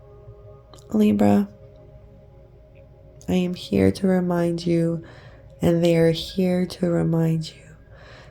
Libra, I am here to remind you, and they are here to remind you,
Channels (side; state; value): both; identical; correlation 1.00